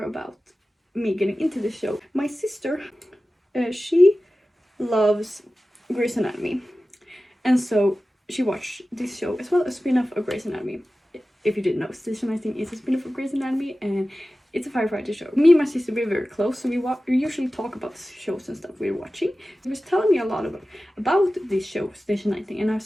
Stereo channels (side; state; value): both; normal; correlation 0.95